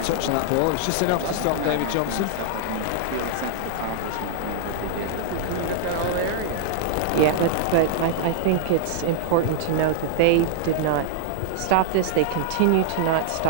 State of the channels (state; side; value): different; both; correlation -0.01